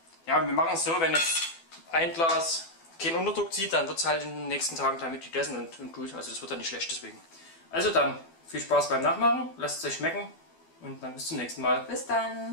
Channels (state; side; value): late; right; 12 ms